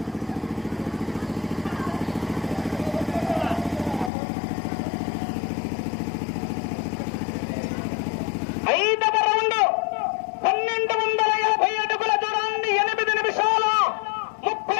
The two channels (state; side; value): drops out; right; at 4.1 s